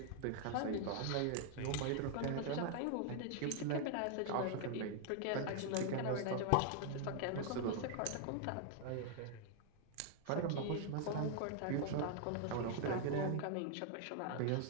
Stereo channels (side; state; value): both; different; correlation 0.00